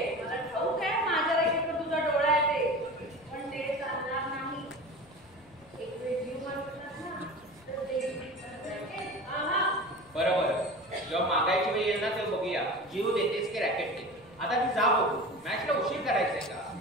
मला ठाऊक आहे माझ्या रॅकेटवर तुझा डोळा आहे ते, पण ते चालणार नाही. एक वेळ जीव मारतात ना तर ते रॅकेट. बरोबर, जेव्हा मागायची वेळ येईल ना तेव्हा बघूया जीव देतेस की रॅकेट दे. आता ती जा बघू, मॅचला उशीर करायचंय का?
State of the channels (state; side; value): noise; left; rumble, 27 dB below the sound